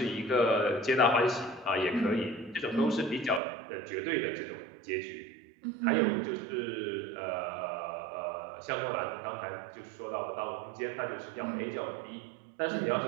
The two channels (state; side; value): drops out; left; at 3.4 s